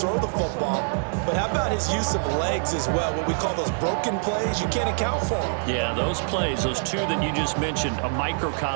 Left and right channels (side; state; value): left; silent; digital silence